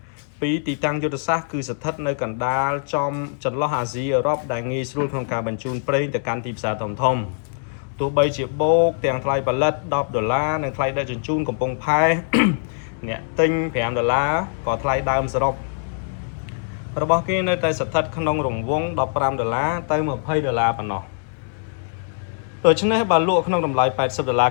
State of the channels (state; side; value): silent; right; digital silence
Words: ពីទីតាំងយុទ្ធសាស្ត្រគឺស្ថិតនៅកណ្ដាលចន្លោះអាស៊ីអឺរ៉ុបដែលងាយស្រួលក្នុងការបញ្ជូនប្រេងទៅកាន់ទីផ្សារធំទោះបីជាបូកទាំងថ្លៃផលិត10ដុល្លារនិងថ្លៃដឹកជញ្ជូនកំពង់ផែ អ្នកទិញ5ដុល្លារក៏ថ្លៃដើមសរុបរបស់គេនៅតែស្ថិតក្នុងរង្វង់15ដុល្លារទៅ20ដុល្លារប៉ុណ្ណោះដូច្នេះបើលក់ក្នុងតម្លៃ80ដុល្លារ